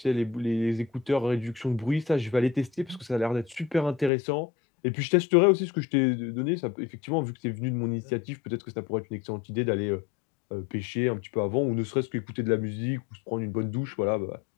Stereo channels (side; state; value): right; drops out; at 4.1 s